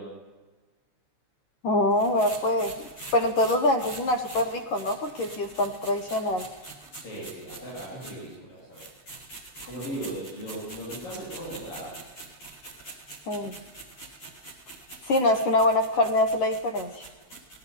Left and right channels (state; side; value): late; right; 11 ms